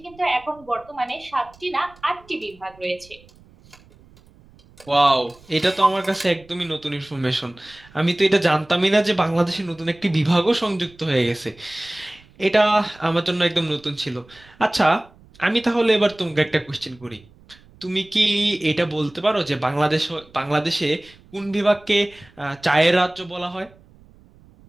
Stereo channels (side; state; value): right; noise; rumble, 26 dB below the sound